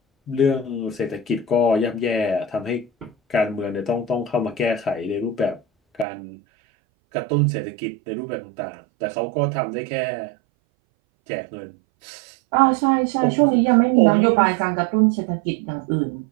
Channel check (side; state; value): left; drops out; at 6.1 s